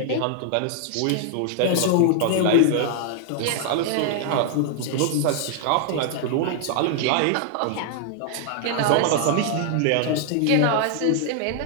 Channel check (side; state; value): both; different; correlation 0.00